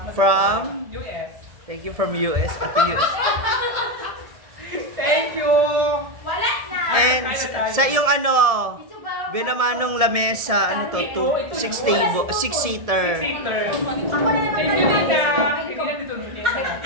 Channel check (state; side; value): late; left; 1.7 ms